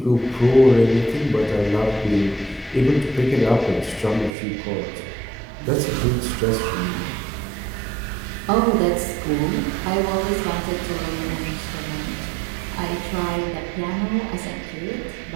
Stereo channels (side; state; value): left; drops out; at 4.4 s